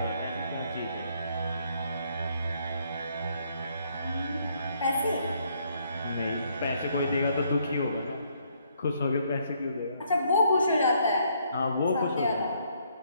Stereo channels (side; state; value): both; inverted; correlation -0.70